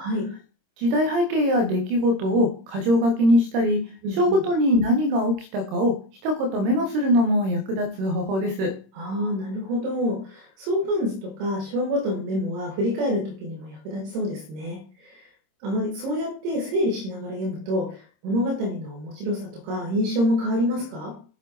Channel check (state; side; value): late; left; 26 ms